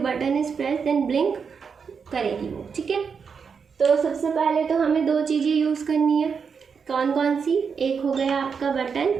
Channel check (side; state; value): left; quieter; 6.0 dB